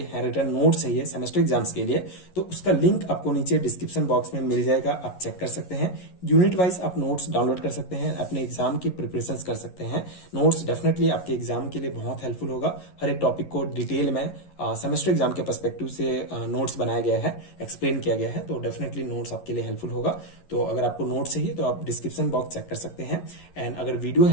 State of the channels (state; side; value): late; right; 11 ms